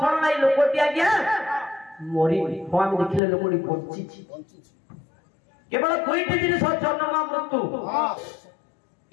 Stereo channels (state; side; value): drops out; right; at 3.2 s